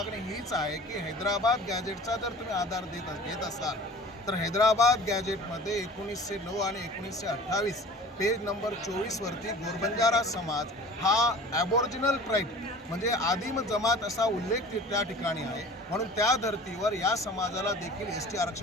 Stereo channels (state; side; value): normal; both; correlation 0.42